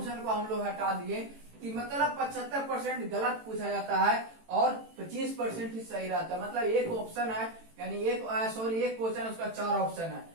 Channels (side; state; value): left; late; 18 ms